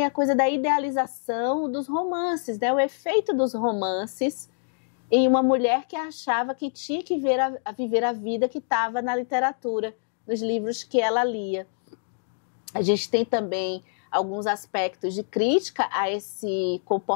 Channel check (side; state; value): right; silent; digital silence